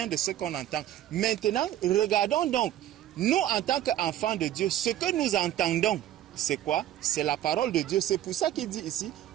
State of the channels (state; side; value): quieter; left; 12.6 dB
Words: de ce qu'on entend. Maintenant, regardons donc, nous en tant qu'enfants de Dieu, ce que nous entendons, c'est quoi? C'est la parole de Dieu. C'est pour ça qu'il dit ici,